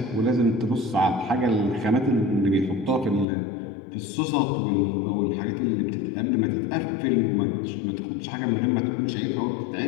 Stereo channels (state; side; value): drops out; right; at 3.2 s